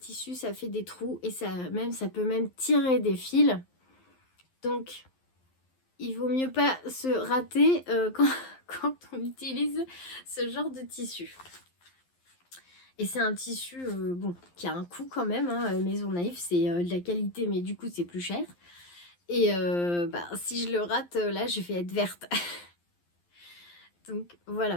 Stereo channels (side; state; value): right; late; 11 ms